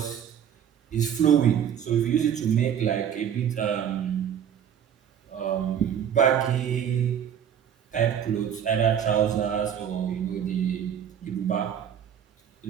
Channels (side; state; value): left; quieter; 8.9 dB